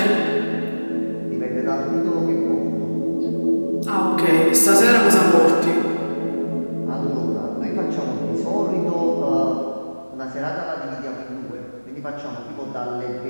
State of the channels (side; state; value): both; inverted; correlation -1.00